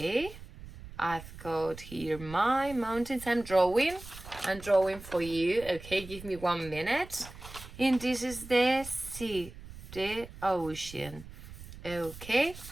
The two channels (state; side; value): noise; right; rumble, 15 dB below the sound